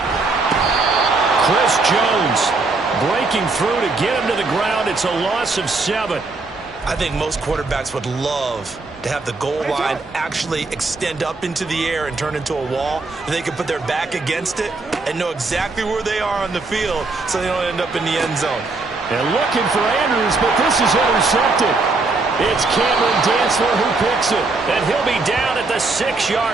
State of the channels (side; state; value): left; quieter; 3.6 dB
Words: Chris Jones breaking through to get him to the ground. It's a loss of 7. I think most quarterbacks would love to have the goal line actually extend up into the air and turn into a wall. They can put their back against it and know exactly where they are on the field so they don't end up in the end zone. And looking for Andrews, but this is intercepted. It's Cameron Dantzler who picks it, and he'll be down at the